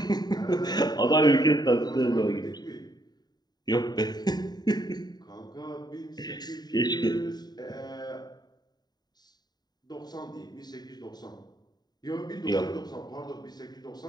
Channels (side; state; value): right; late; 0.20 ms